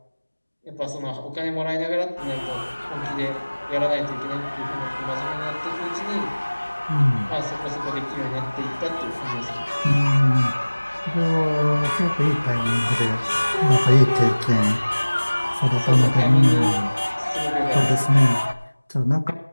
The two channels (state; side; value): inverted; both; correlation -1.00